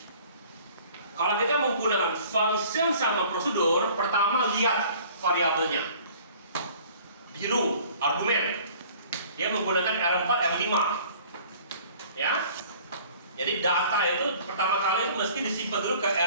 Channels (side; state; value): both; inverted; correlation -0.51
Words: kalau kita menggunakan function sama prosedur, pertama lihat variabelnya. Biru, argumen. Dia menggunakan R4, R5. Ya. Jadi data itu pertama kali itu mesti disimpan dulu ke